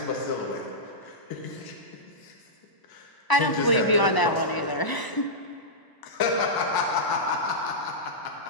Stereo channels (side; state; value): right; late; 1.0 ms